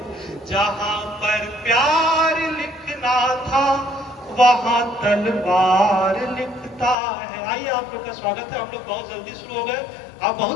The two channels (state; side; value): drops out; right; at 7.0 s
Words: जहां पर प्यार लिखना था, वहां तलवार लिखता है। आइए, आप लोग का स्वागत है। हम लोग बहुत जल्दी शुरू हो गए, आप